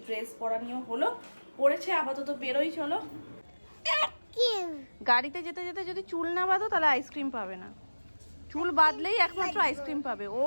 ড্রেস পরা নিয়েও হলো, পরেছে আপাতত বেরোই। চলো, গাড়িতে যেতে যদি চুল না বাঁধো তাহলে আইসক্রিম পাবে না, চুল বাঁধলেই একমাত্র আইসক্রিম পাবে। ও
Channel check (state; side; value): inverted; both; correlation -1.00